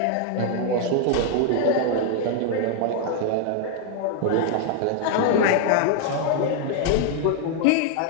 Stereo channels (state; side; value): different; both; correlation 0.00